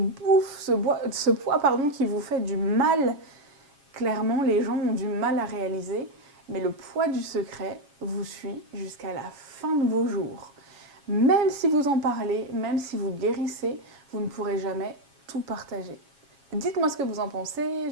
ce poids qui vous fait du mal. Clairement, les gens ont du mal à réaliser, mais le poids du secret vous suit jusqu'à la fin de vos jours. Même si vous en parlez, même si vous guérissez, vous ne pourrez jamais tout partager. Dites-moi ce que vous en pensez,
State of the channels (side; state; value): left; late; 7.2 ms